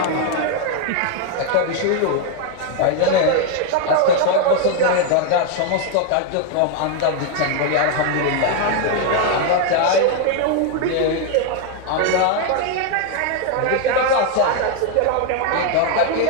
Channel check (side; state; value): both; different; correlation 0.01